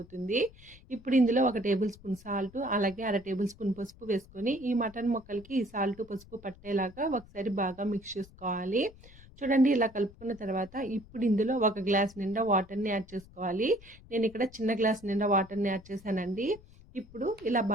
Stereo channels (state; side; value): noise; left; rumble, 22 dB below the sound